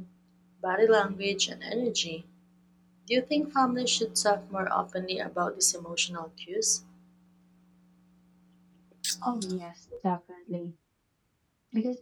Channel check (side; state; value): both; identical; correlation 1.00